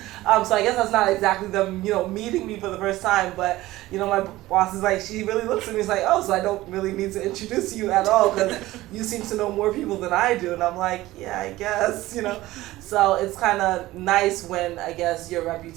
so I guess that's not exactly them, meeting me for the first time. But, my boss is like, she really looks at me, is like, oh, so I don't really need to introduce you at all because you seem to know more people than I do. And I'm like, yeah, I guess, So it's kind of nice when, I guess, your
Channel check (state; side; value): quieter; left; 17.2 dB